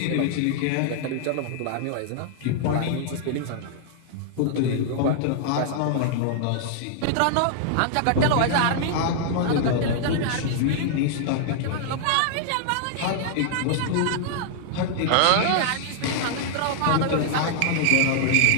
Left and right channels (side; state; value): both; different; correlation 0.00